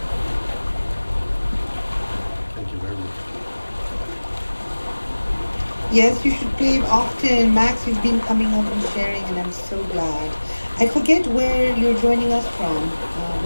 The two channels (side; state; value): both; inverted; correlation -1.00